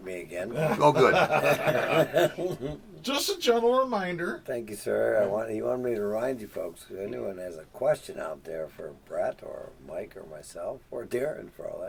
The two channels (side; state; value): both; identical; correlation 1.00